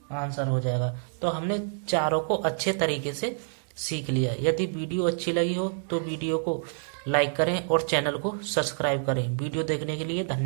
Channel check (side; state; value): left; silent; digital silence